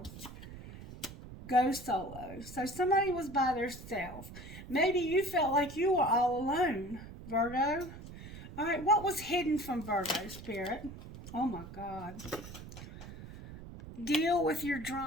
Go solo. So somebody was by themselves. Maybe you felt like you were all alone, Virgo. All right, what was hidden from Virgo, Spirit? Oh, my God. Deal with your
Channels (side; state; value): right; noise; rumble, 13 dB below the sound